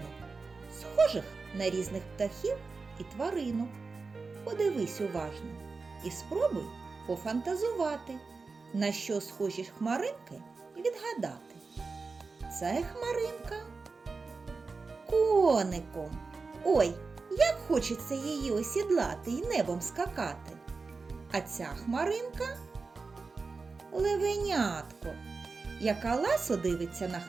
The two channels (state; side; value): quieter; left; 4.3 dB